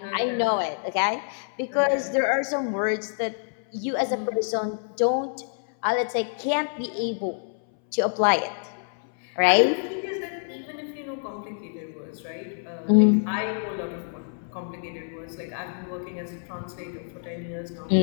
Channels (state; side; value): silent; right; 60 dB below the other